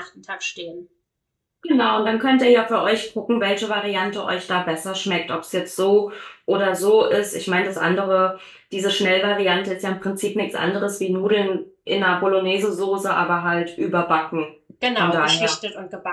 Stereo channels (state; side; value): identical; both; correlation 1.00